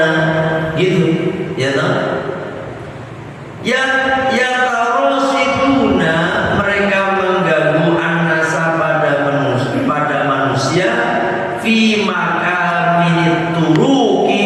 gitu ya toh.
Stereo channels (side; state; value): both; identical; correlation 1.00